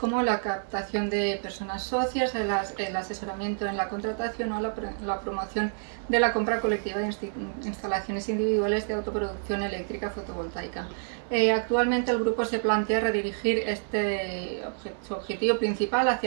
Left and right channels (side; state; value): left; silent; digital silence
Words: la captación de personas socias, el asesoramiento en la contratación o la promoción de la compra colectiva de instalaciones individuales de autoproducción eléctrica fotovoltaica. Actualmente el grupo se plantea redirigir su objetivo principal